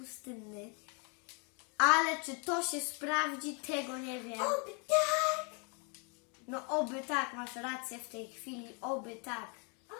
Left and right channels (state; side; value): quieter; right; 35.9 dB